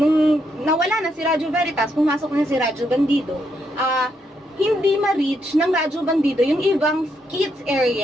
nawala na si Radyo Veritas, pumasok na si Radyo Bandido, hindi ma-reach ng Radyo Bandido yung ibang kids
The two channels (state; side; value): normal; both; correlation 0.78